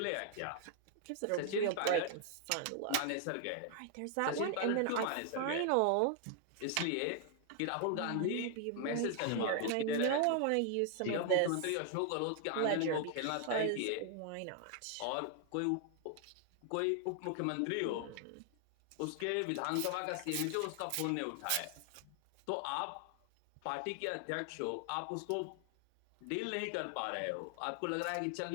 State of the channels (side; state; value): both; different; correlation 0.00